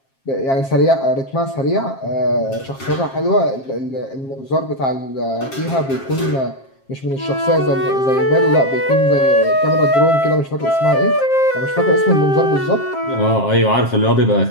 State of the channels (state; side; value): late; right; 7.5 ms